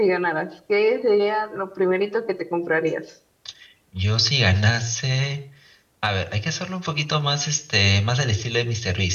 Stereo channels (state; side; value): identical; both; correlation 1.00